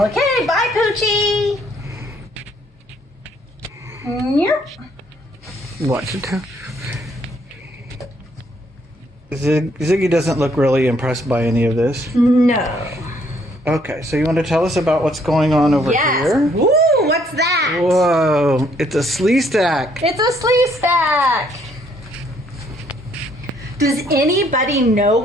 bye, Poochie. Yep. What? Ziggy doesn't look really impressed by any of this. No. Okay, so you want to tell us about what's going on over here? Woo, what's that? Whoa, it's a slee stack. It's a slee stack. Does anybody know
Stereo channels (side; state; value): both; normal; correlation 0.67